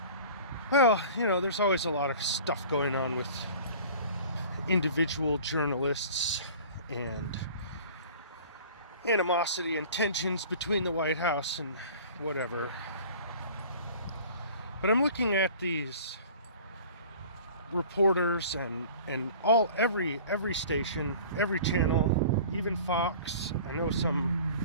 well, there's always a lot of stuff going on with individual journalists and animosity and tensions between the White House and whatever. But I'm looking at these reporters and every station, every channel, even Fox. I know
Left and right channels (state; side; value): inverted; both; correlation -0.44